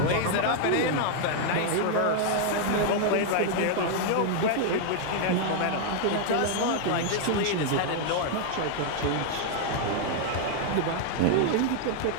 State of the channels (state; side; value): different; both; correlation 0.00